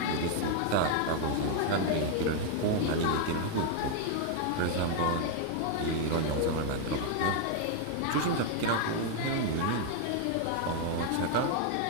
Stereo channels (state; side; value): different; both; correlation 0.00